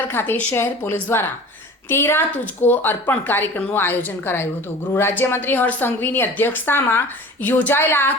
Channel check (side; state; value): both; normal; correlation 0.40